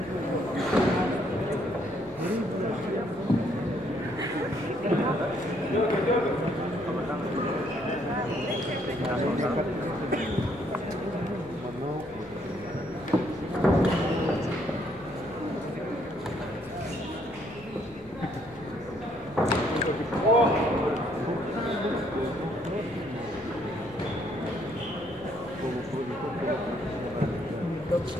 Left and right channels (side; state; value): left; noise; hum, 23 dB below the sound